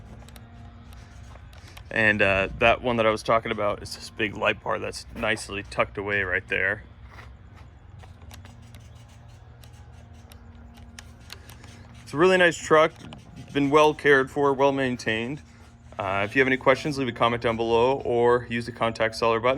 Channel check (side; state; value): both; identical; correlation 1.00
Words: And that one that I was talking about is this big light bar that's nicely tucked away right there. It's a really nice truck, been well cared for, well maintained. If you have any questions, leave a comment down below or use the contact seller